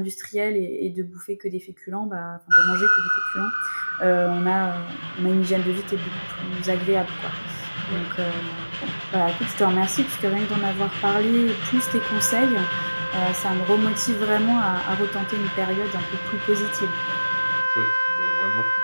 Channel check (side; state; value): both; inverted; correlation -1.00